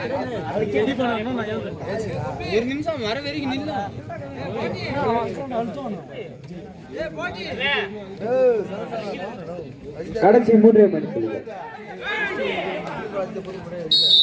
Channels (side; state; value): both; identical; correlation 1.00